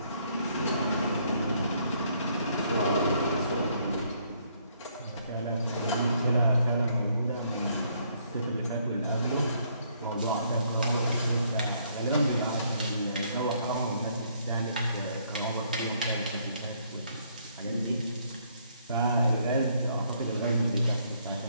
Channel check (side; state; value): both; inverted; correlation -0.69